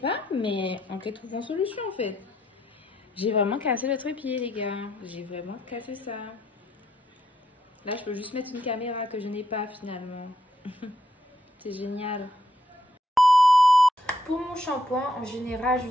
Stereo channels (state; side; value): normal; both; correlation 0.76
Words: mais on peut trouver une solution en fait. J'ai vraiment cassé le trépied, les gars. J'ai vraiment cassé ça. Là, je peux juste mettre une caméra que je n'ai pas finalement. C'est génial. Pour mon shampoing, en général,